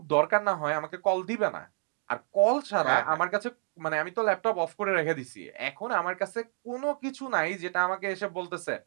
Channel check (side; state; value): left; silent; digital silence